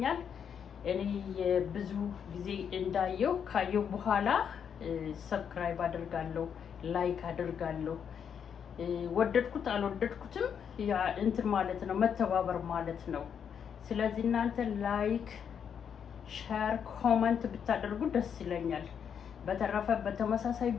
እኔ ብዙ ጊዜ እንዳየው ካየው በኋላ ሰብስክራይብ አደርጋለሁ፣ ላይክ አደርጋለሁ። ወደድኩት አልወደድኩትም ያ እንትን ማለት ነው፣ መተባበር ማለት ነው። ስለዚህ እናንተ ላይክ፣ ሼር፣ ኮሜንት ብታደርጉ ደስ ይለኛል። በተረፈ በተመሳሳይ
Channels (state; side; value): quieter; right; 7.7 dB